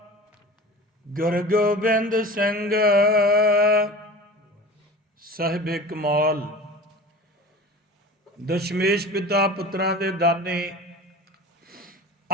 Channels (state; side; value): normal; both; correlation 0.36